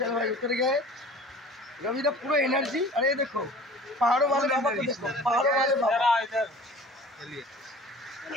ভাই উতরে गए, रविदा पूरा एनर्जी। अरे ये देखो पहाड़ों वाले बाबा को देखो, पहाड़ों वाले बाबा। चलिए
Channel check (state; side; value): normal; both; correlation 0.43